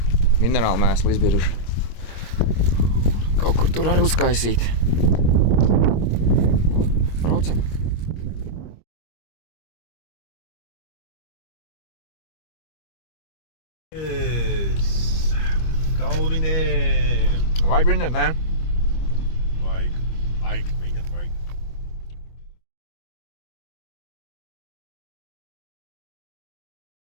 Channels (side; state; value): right; late; 25 ms